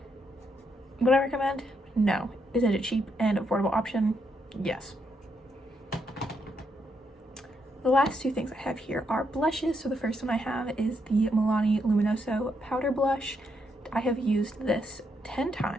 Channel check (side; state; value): both; normal; correlation 0.78